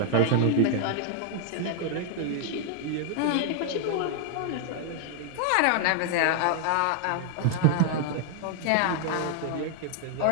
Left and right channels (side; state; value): both; different; correlation 0.00